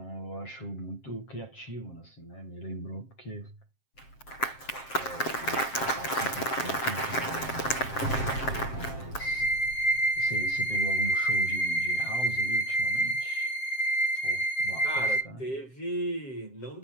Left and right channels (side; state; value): right; late; 7.6 ms